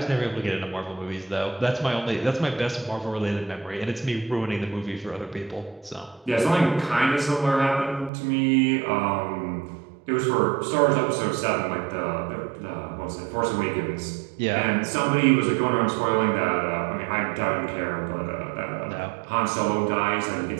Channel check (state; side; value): drops out; left; at 8.1 s